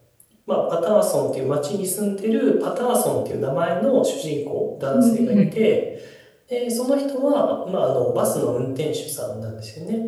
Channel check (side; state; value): both; identical; correlation 1.00